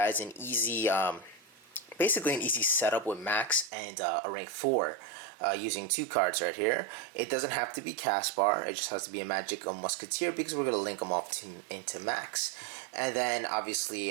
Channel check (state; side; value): drops out; left; at 3.7 s